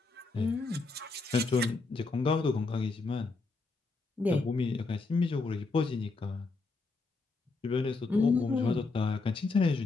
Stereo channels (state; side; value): quieter; right; 3.8 dB